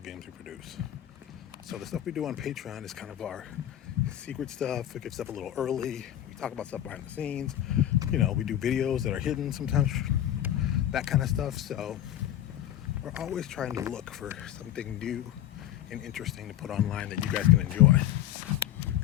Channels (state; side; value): quieter; right; 12.0 dB